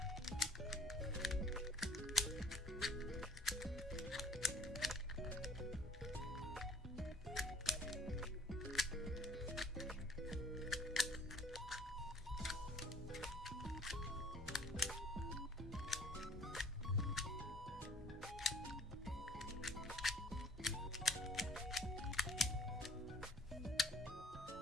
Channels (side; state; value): both; normal; correlation 0.55